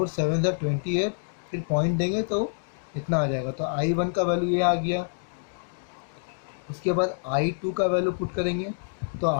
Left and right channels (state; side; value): silent; right; digital silence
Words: 7 28, फिर पॉइंट देंगे तो इतना आ जाएगा। तो I1 का वैल्यू ये आ गया। उसके बाद I2 का वैल्यू पुट करेंगे। तो